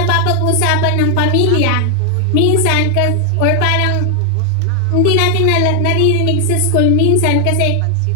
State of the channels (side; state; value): both; different; correlation 0.00